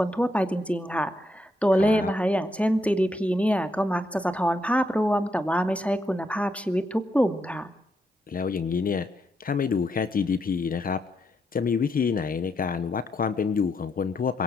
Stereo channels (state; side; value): normal; both; correlation 0.79